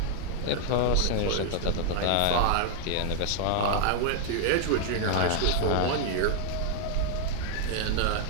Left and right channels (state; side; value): different; both; correlation 0.00